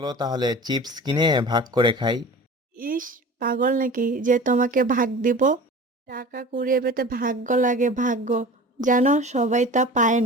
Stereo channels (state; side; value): normal; both; correlation 0.38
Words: তাহলে চিপস কিনে ভাগ করে খাই। ইস, পাগল নাকি যে তোমাকে ভাগ দিব? টাকা কুড়িয়ে পেতে ভাগ্য লাগে, ভাগ্য। জানো, সবাই তা পায়